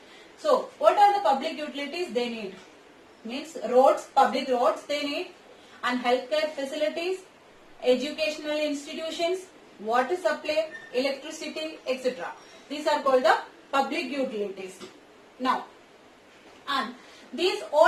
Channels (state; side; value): identical; both; correlation 1.00